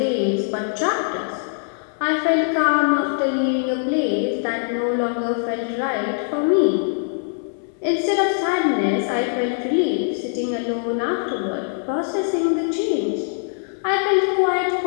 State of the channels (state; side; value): silent; right; 64 dB below the other